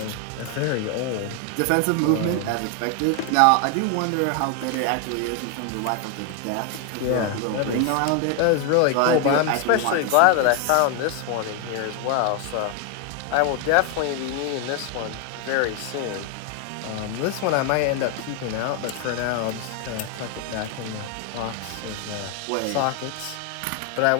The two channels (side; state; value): both; different; correlation 0.01